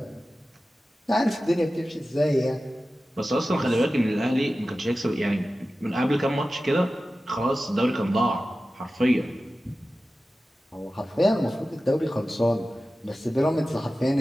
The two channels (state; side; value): normal; both; correlation 0.95